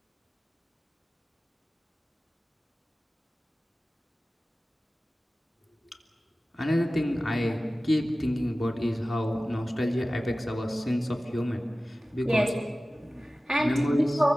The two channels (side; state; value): both; normal; correlation 0.96